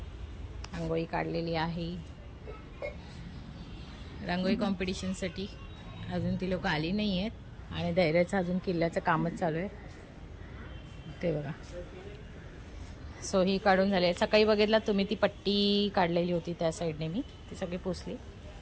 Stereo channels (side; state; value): both; identical; correlation 1.00